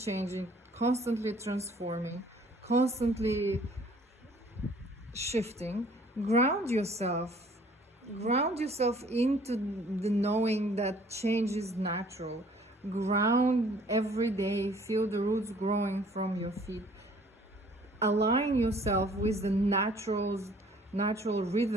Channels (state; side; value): normal; both; correlation 0.56